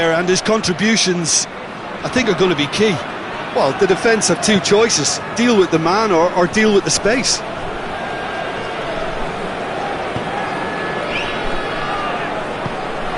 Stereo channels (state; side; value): identical; both; correlation 1.00